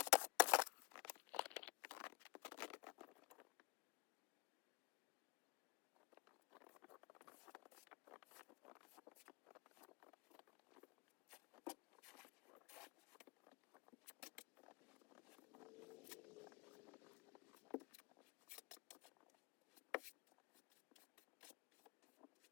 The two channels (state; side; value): quieter; right; 24.4 dB